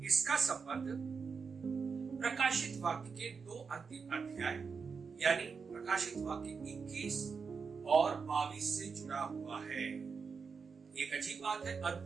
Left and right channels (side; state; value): left; quieter; 5.4 dB